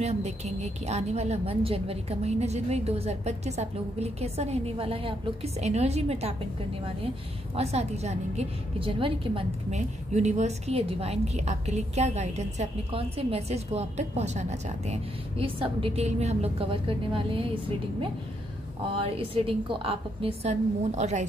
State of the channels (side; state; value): both; normal; correlation 0.76